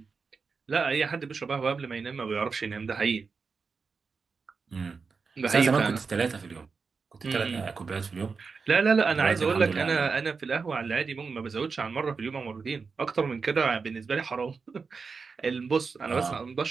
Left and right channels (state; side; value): quieter; left; 5.0 dB